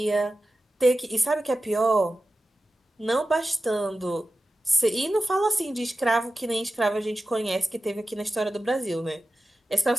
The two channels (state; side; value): normal; both; correlation 0.93